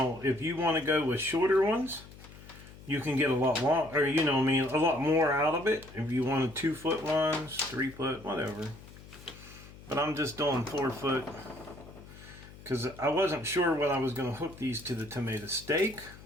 if you want to go with shorter ones, you can get a lot long, or a lot more out of it. If you wanted 2-foot ones, 3-foot, whatever. But I'm just doing 4-foot because I wasn't sure when I was going to hook these to the tomato stake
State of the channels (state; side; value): noise; left; hum, 18 dB below the sound